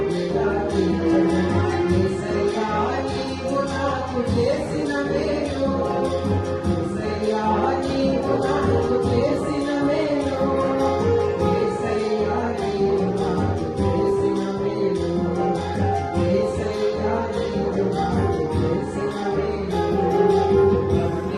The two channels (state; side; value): identical; both; correlation 1.00